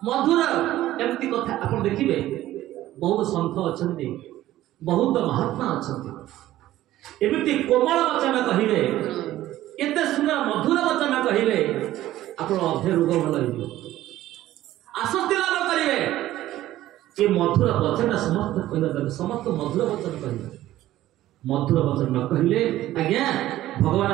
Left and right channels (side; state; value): left; quieter; 14.5 dB